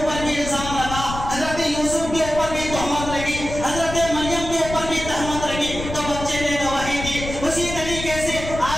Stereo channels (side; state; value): left; noise; rumble, 8 dB below the sound